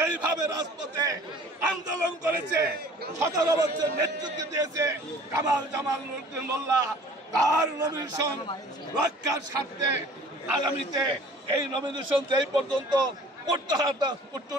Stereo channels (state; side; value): normal; both; correlation 0.49